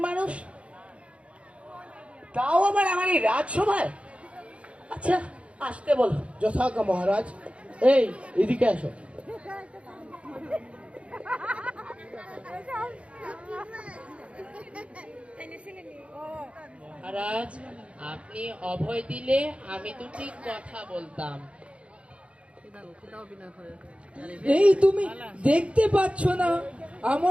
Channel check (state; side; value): late; left; 0.061 ms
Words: মানুষ? তাও আবার আমার এই রাজসভায়? আচ্ছা আসতে বলো। যথাজ্ঞা মহারাজ। এই এদিকে আসো। মহারাজ, আপনি অভয় দিলে আমি দুটি কথা বলতাম। এই তুমি দেখতে পাচ্ছ না